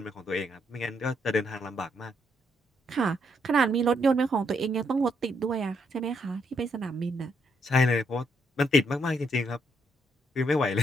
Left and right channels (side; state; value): both; normal; correlation 0.75